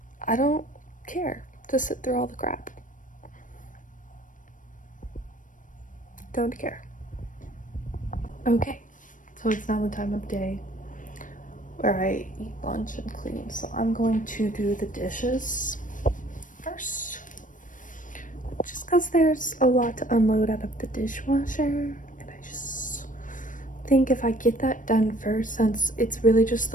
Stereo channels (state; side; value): late; right; 0.38 ms